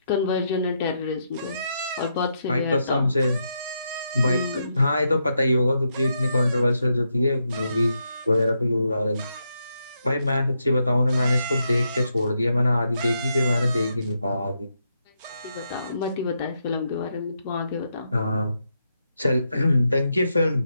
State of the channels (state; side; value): inverted; both; correlation -0.82